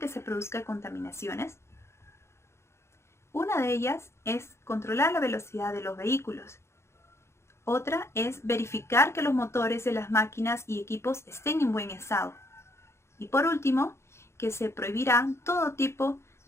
se produzcan contaminaciones? Una de ellas es controlar la velocidad de los vehículos. Otra es verificar que los motores de las máquinas y equipos estén en buen estado. Y por último, que se prohibirá todo tipo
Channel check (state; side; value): late; right; 0.13 ms